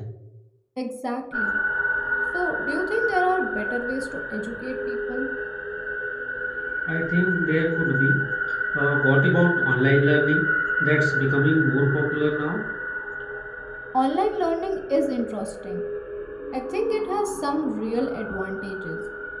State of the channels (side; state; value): both; identical; correlation 1.00